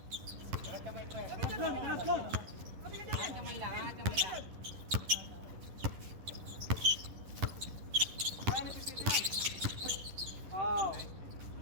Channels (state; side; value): late; left; 11 ms